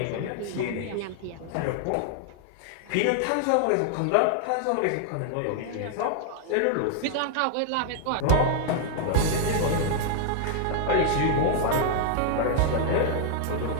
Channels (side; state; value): both; different; correlation 0.00